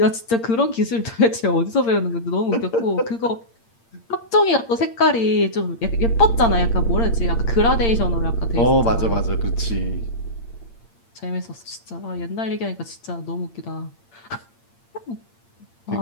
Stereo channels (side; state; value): right; late; 8.7 ms